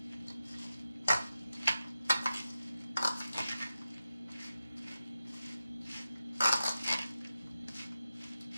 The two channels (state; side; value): inverted; both; correlation -0.92